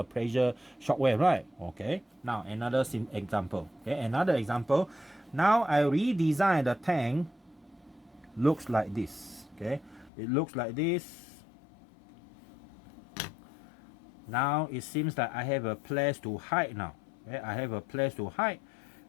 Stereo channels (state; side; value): drops out; right; at 10.1 s